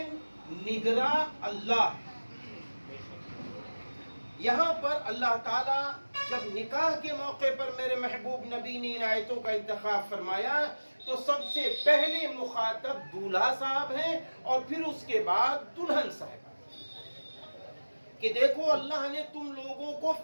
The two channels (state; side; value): inverted; both; correlation -1.00